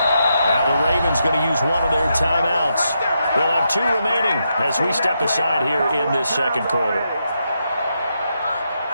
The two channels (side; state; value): both; inverted; correlation -0.83